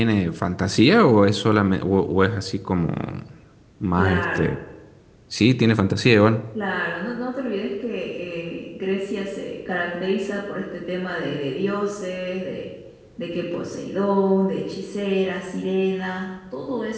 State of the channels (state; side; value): identical; both; correlation 1.00